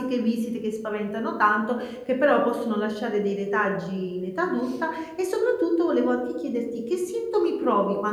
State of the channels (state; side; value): identical; both; correlation 1.00